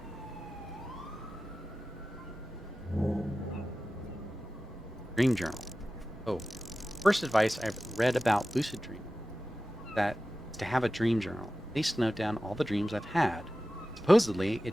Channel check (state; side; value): normal; both; correlation 0.95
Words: Dream journal. Oh, first advice I've read about lucid dreaming that is to have a dream journal, at least note down all the dreams I've had. Supposedly,